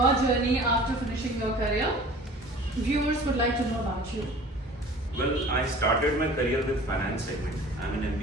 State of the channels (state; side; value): normal; both; correlation 0.45